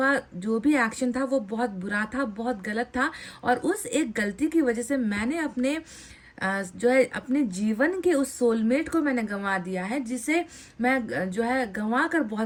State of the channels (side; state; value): both; identical; correlation 1.00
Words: जो भी एक्शन था वो बहुत बुरा था, बहुत गलत था, और उस एक गलती की वजह से मैंने अपने जो है अपने जीवन के उस सोलमेट को मैंने गंवा दिया है, जिसे मैं जो है गंवा कर